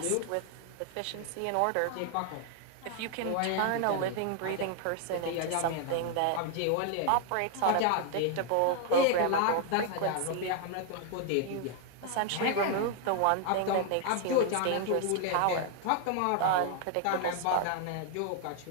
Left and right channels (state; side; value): different; both; correlation 0.00